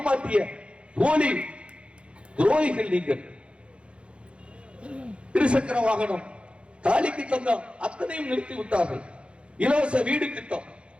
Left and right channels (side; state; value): left; late; 0.059 ms